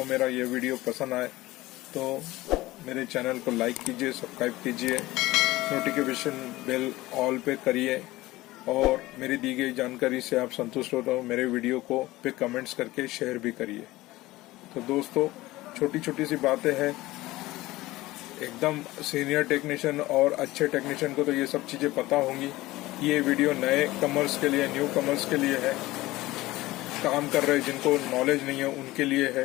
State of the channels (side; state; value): right; quieter; 18.4 dB